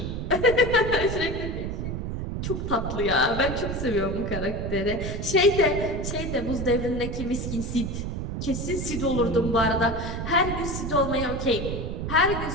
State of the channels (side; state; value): right; noise; rumble, 4 dB below the sound